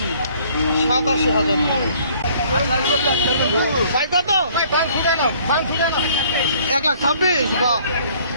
87,000। ভাই কত? 1,26,000, বাহ।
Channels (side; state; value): both; inverted; correlation -0.58